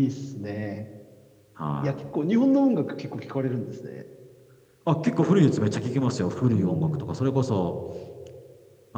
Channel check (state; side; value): identical; both; correlation 1.00